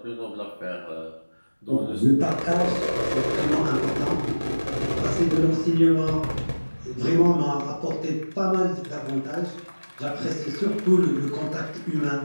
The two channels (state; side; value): inverted; both; correlation -1.00